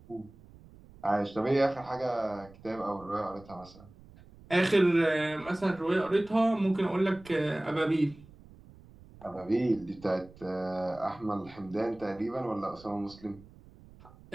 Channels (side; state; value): right; noise; rumble, 22 dB below the sound